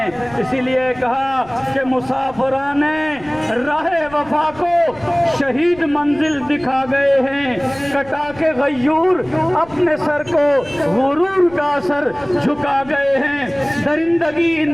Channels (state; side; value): noise; left; rumble, 22 dB below the sound